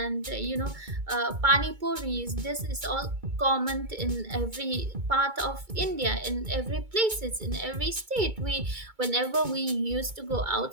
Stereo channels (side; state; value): left; late; 2.2 ms